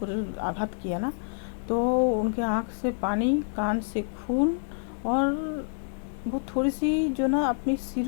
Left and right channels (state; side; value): silent; right; digital silence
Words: आघात किया ना, तो उनके आँख से पानी, कान से खून, और वो थोड़ी सी जो ना अपनी